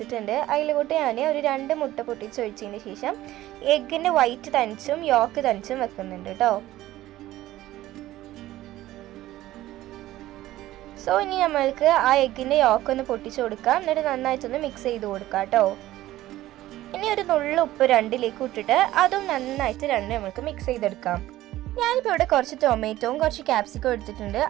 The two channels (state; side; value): quieter; left; 15.3 dB